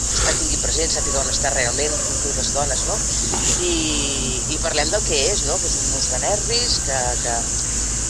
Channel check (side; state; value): both; identical; correlation 1.00